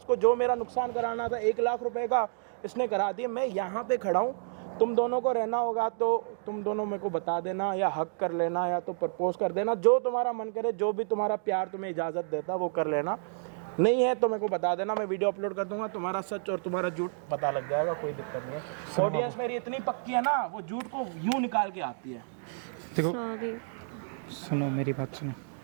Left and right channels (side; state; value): left; silent; digital silence